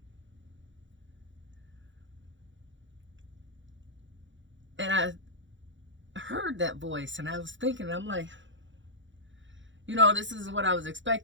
And I heard that voice, and I was thinking, I'm like, this is what I was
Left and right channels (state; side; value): late; left; 0.54 ms